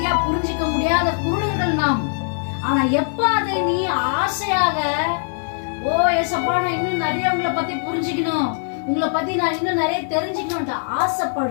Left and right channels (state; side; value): silent; right; 55 dB below the other